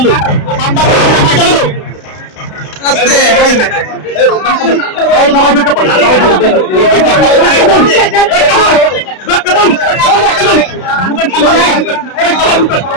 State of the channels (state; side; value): late; right; 32 ms